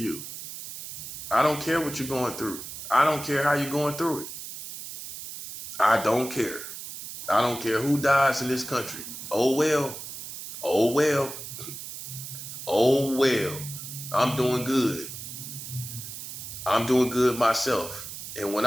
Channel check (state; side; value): noise; right; hiss, 10 dB below the sound